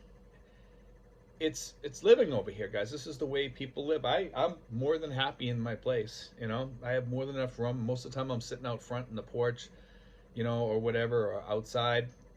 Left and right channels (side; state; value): both; identical; correlation 1.00